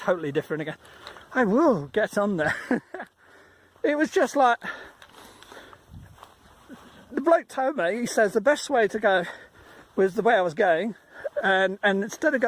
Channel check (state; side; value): identical; both; correlation 1.00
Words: different again. I will get on there. It was just like, the bloke told me, he says the best way to go was the way I was going, and instead